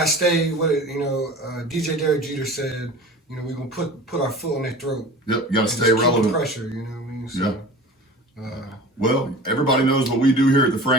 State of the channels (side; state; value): both; normal; correlation 0.38